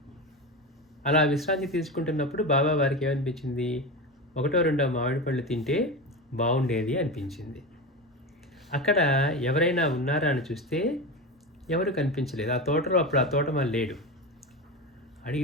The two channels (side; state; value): both; normal; correlation 0.23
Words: అలా విశ్రాంతి తీసుకుంటున్నప్పుడు బాబా వారికి ఏమనిపించింది? 1-2 మామిడి పళ్ళు తింటే బాగుండేది అనిపించింది. అక్కడ ఎవరైనా ఉన్నారా అని చూస్తే ఎవరు కనిపించలేదు. ఆ తోటలో అప్పుడు ఆ తోటమాలి లేడు.